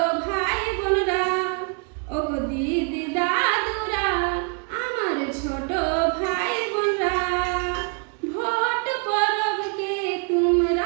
ভাই বোনরা, ও গো দিদি দাদুরা, আমার ছোট ভাই বোনরা, ভোট পরবকে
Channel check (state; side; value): quieter; left; 39.6 dB